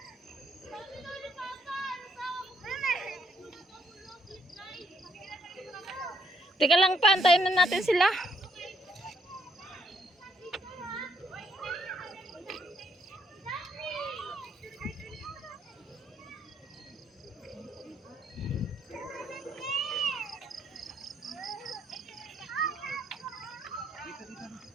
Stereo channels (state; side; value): normal; both; correlation 0.71